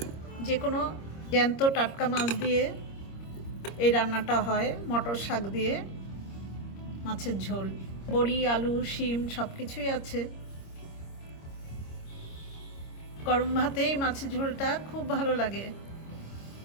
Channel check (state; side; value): late; right; 26 ms